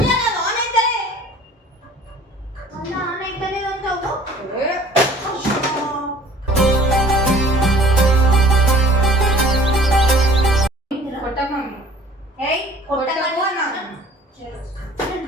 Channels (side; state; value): both; normal; correlation 0.50